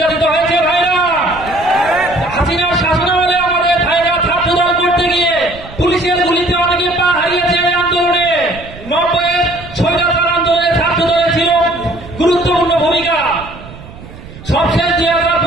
হয়েছে ভাইরা। হাসিনার শাসন আমলে আমাদের ভাইরা ছাত্রদল করতে গিয়ে পুলিশের গুলিতে অনেকে পা হারিয়েছে। এই আন্দোলনে 90-এর স্বৈরাচার আন্দোলনে ছাত্রদলের ছিল গুরুত্বপূর্ণ ভূমিকা। সবশেষ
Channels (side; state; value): right; noise; rumble, 17 dB below the sound